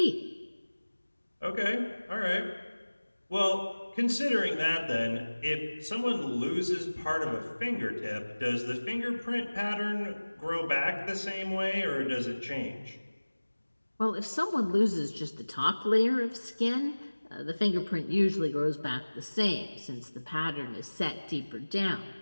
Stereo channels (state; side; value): inverted; both; correlation -1.00